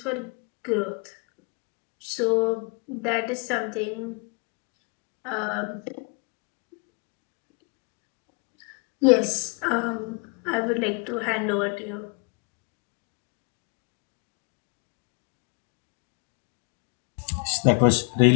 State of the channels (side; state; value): right; quieter; 34.4 dB